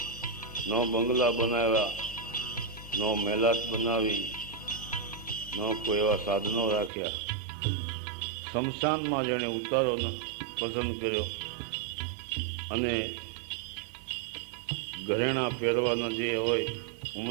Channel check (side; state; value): left; drops out; at 6.9 s